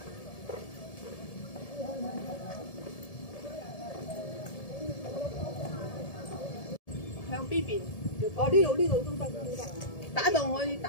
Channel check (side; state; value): right; late; 1.7 ms